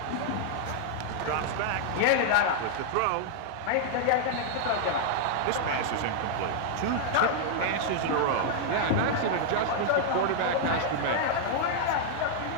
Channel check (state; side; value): different; both; correlation -0.01